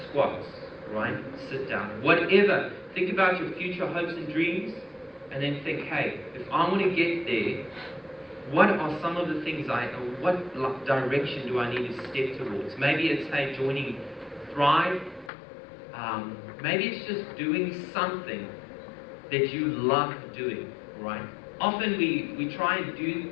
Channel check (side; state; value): right; drops out; at 15.3 s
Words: squats, right? Sit down. Whatever. Think about your future hopes and dreams, and then think, hey, if I want to get there, what are some of the things what direction do I need to step towards? Maybe it's, hey, joining Thrive. Maybe it's just doing something that you love doing, right? Often we try and do